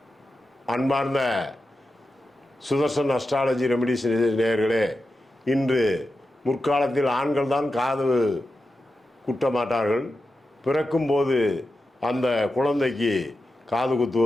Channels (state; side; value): normal; both; correlation 0.90